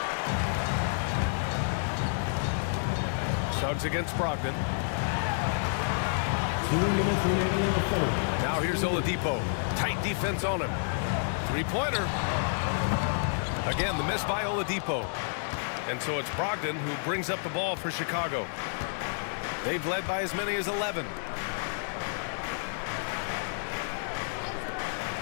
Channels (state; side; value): silent; right; digital silence